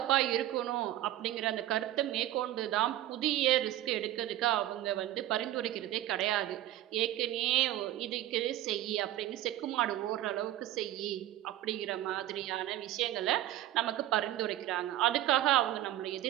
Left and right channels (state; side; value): quieter; left; 14.0 dB